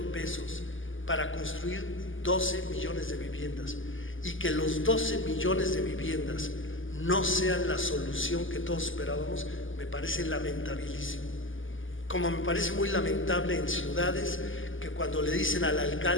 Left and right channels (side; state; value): right; late; 0.58 ms